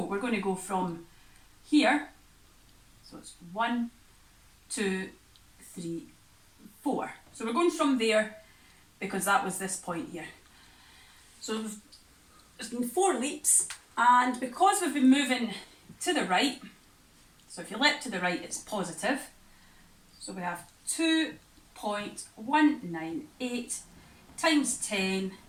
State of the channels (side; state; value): both; identical; correlation 1.00